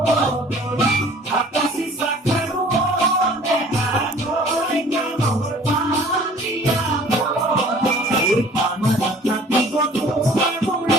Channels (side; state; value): both; normal; correlation 0.50